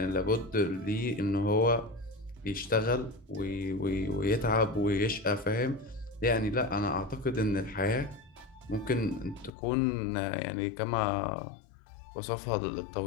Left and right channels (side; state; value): right; drops out; at 9.5 s